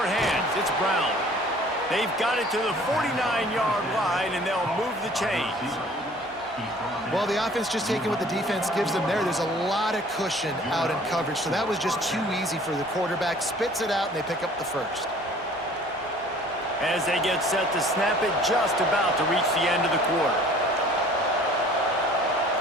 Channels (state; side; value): normal; both; correlation 0.51